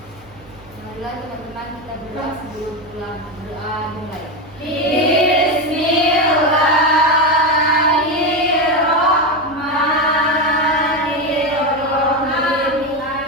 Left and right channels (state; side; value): noise; right; hum, 25 dB below the sound